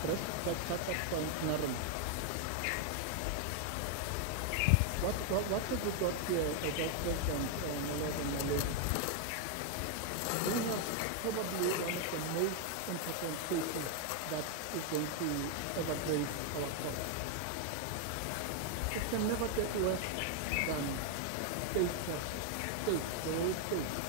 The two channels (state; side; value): different; both; correlation 0.00